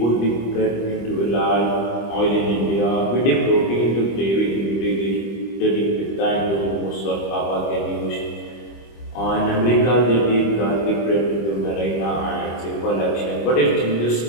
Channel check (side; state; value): right; late; 25 ms